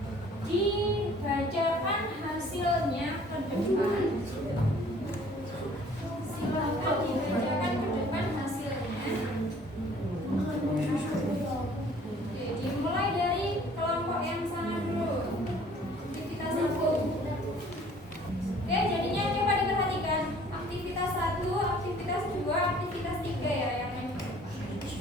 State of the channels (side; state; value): both; normal; correlation 0.54